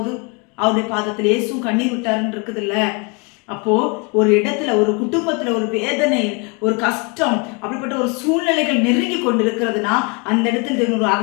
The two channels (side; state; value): right; quieter; 32.0 dB